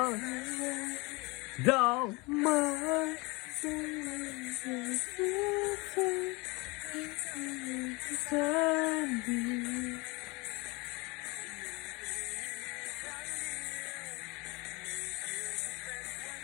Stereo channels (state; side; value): quieter; right; 26.0 dB